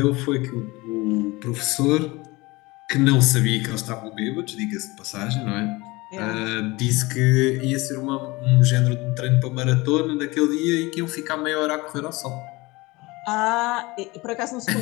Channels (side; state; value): right; quieter; 22.6 dB